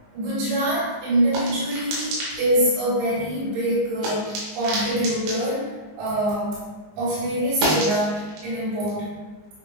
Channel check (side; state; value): left; late; 19 ms